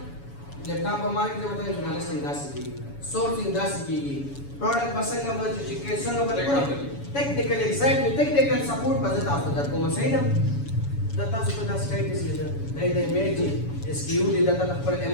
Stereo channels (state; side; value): late; right; 7.1 ms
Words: لیپټاپ په مارکیټ کې وته ژورنالیسټینګ داسې کېږي سورټینګ داسې کېږي پروډکټ به څنګه به چې څنګه به ټیکنیکل ایگزیکټیو ټیکنیکل سپورټ به زه تاسو ته درکوم صحیح ده دا تاسو ته دا سټایټس دی دا د ایمیج اس کیو دی دا خپل